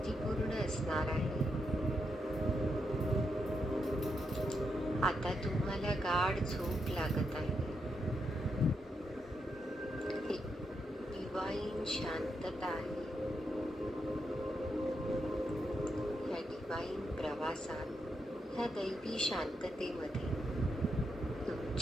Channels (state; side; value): normal; both; correlation 0.82